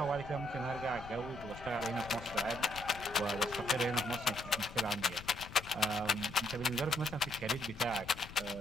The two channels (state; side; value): noise; left; rumble, 15 dB below the sound